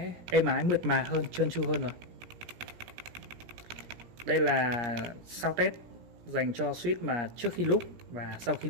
êm ái, mượt mà hơn, trơn tru hơn rồi. Đây là sound test dành cho switch mà trước khi loop và sau khi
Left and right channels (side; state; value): left; late; 17 ms